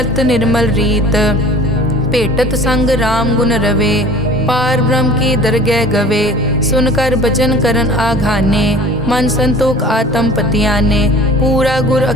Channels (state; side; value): normal; both; correlation 0.45